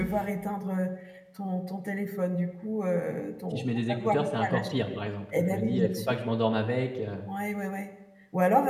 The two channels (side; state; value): both; identical; correlation 1.00